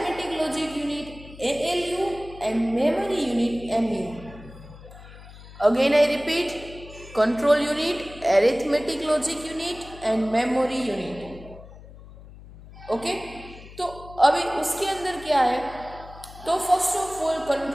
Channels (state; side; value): noise; left; hum, 18 dB below the sound